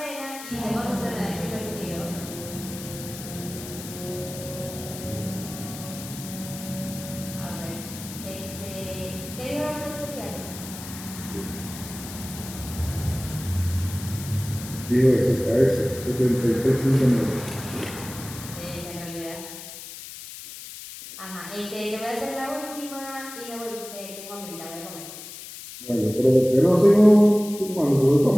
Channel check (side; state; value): left; noise; hiss, 12 dB below the sound